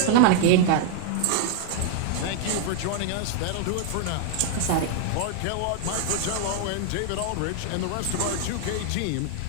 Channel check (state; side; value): different; both; correlation 0.00